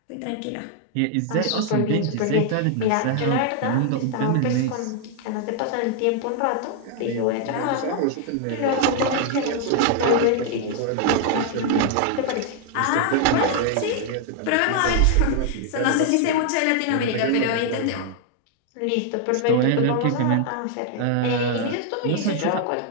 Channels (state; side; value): different; both; correlation 0.00